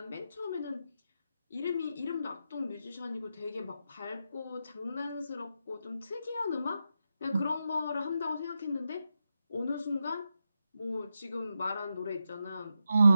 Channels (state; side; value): inverted; both; correlation -0.87